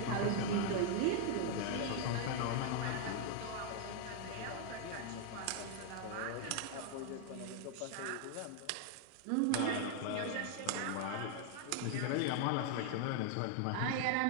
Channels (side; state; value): both; different; correlation 0.00